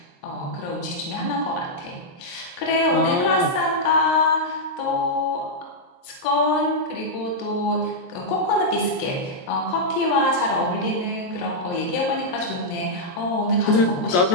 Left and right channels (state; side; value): late; right; 23 ms